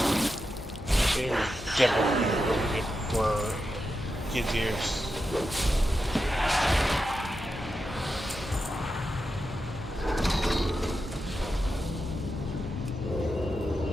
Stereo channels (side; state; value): both; normal; correlation 0.88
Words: It was definitely for kids' ears.